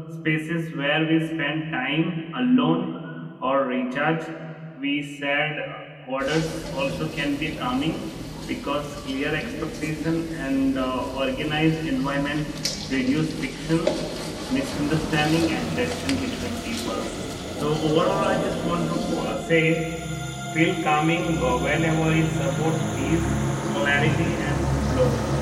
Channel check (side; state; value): both; identical; correlation 1.00